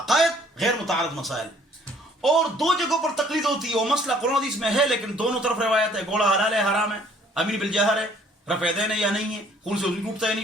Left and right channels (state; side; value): normal; both; correlation 0.59